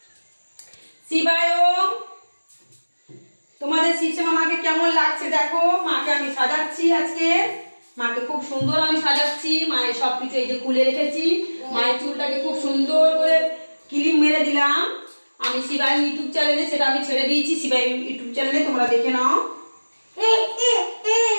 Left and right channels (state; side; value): inverted; both; correlation -1.00